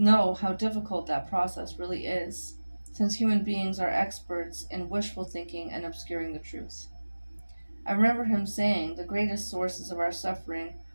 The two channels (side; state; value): both; inverted; correlation -1.00